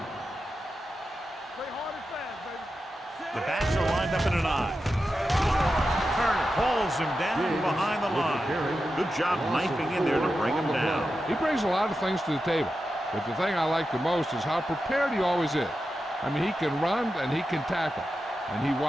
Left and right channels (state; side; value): normal; both; correlation 0.90